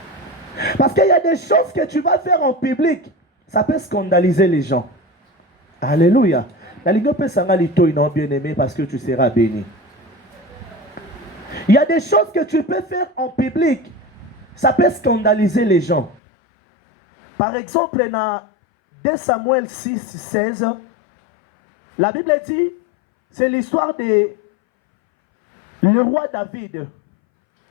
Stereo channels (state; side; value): drops out; right; at 16.2 s